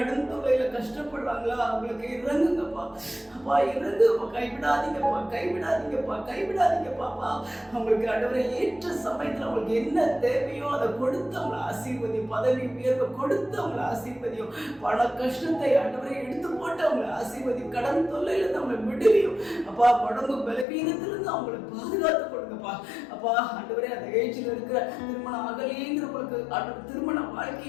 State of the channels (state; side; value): drops out; right; at 20.7 s